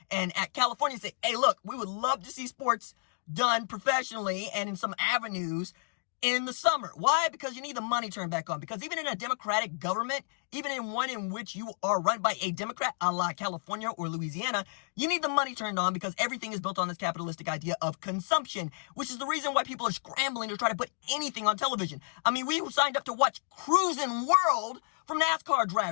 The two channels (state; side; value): silent; right; digital silence